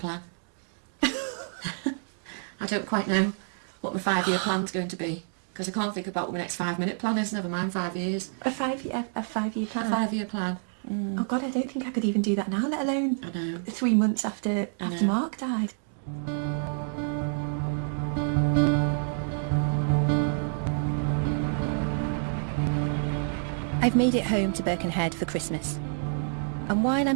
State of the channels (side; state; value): left; silent; digital silence